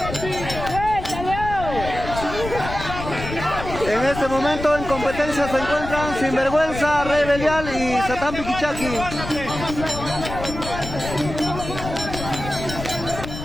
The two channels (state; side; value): noise; left; rumble, 8 dB below the sound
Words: En este momento en competencia se encuentran Sinvergüenza, Rey Belial y Satán Piquichaki.